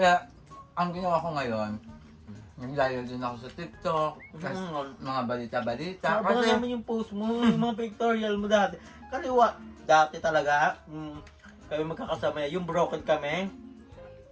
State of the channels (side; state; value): both; identical; correlation 1.00